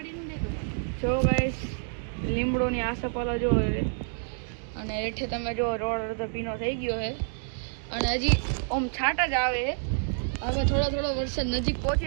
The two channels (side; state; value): left; silent; digital silence